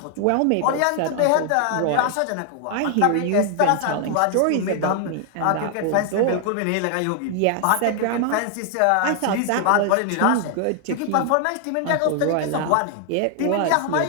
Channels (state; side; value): different; both; correlation 0.00